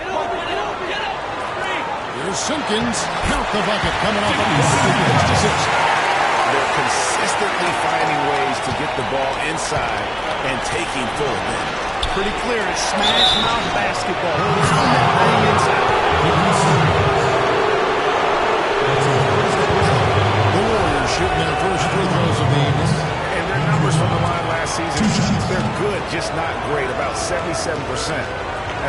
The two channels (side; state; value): both; identical; correlation 1.00